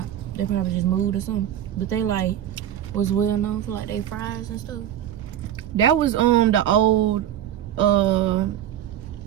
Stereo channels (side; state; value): left; quieter; 11.3 dB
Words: They probably just moved or something. But they like was well known for like their fries and stuff. That was the old